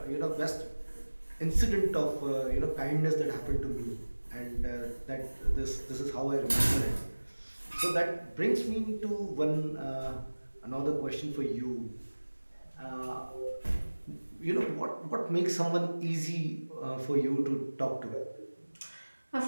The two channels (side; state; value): both; inverted; correlation -1.00